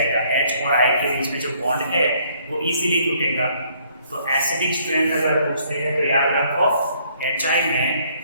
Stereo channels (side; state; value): both; inverted; correlation -0.65